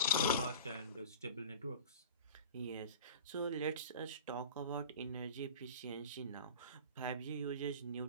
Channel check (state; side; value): inverted; both; correlation -0.38